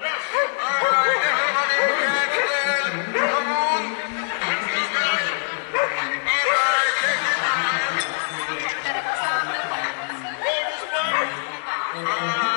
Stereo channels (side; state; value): right; silent; digital silence